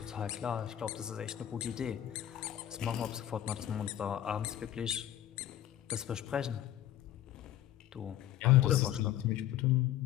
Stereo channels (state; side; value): quieter; right; 12.1 dB